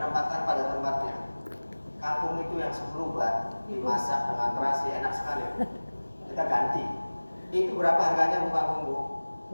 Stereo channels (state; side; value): inverted; both; correlation -1.00